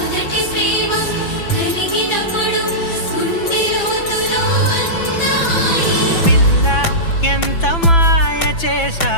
ప్రేమ కలిగినప్పుడు గుండె లోతులో అంత హాయి పిల్ల ఎంత మాయ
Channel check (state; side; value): late; right; 6.0 ms